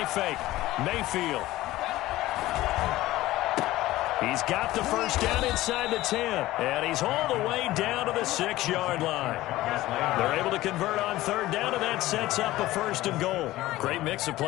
fake. Mayfield. He's got the first down inside the 10. And he's all the way down to the 6-yard line. They're able to convert on third down, and that sets up a first and goal. Great mix of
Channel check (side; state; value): right; quieter; 16.7 dB